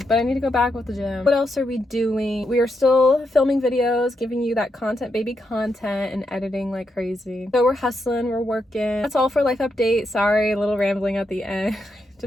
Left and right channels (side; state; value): both; normal; correlation 0.83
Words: But I need to go back with the gym. What else are we doing? We are still filming videos, giving you that content, baby content, and editing like crazy. So we're hustling, we're working. That's all for life update. Sorry, a little rambling at the end.